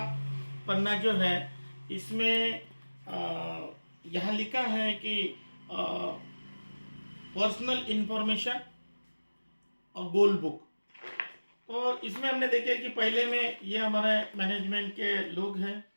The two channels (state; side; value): inverted; both; correlation -1.00